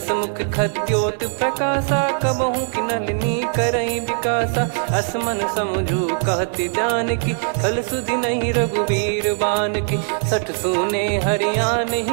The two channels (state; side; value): silent; left; 61 dB below the other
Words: मुख खद्योत प्रकाशा, कबहु कि नलिनी करई विकासा। असमन समझू कहति जानकी, कल सुधि नहीं रघुबीर बान की। सठ सुने हरियाण